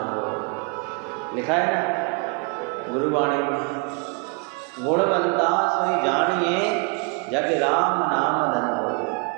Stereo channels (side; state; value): left; quieter; 34.0 dB